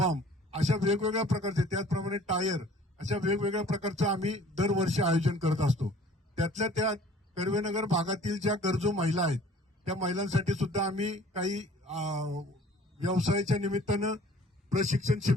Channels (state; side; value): normal; both; correlation 0.51